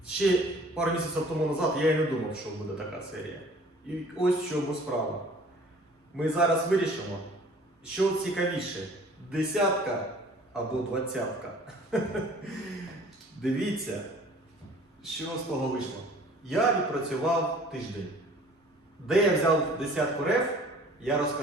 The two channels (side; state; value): both; normal; correlation 0.51